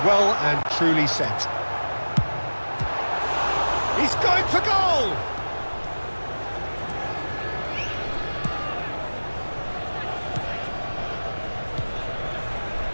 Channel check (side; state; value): both; inverted; correlation -1.00